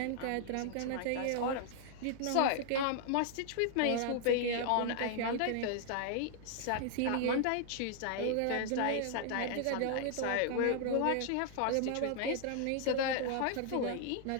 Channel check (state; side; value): different; both; correlation -0.01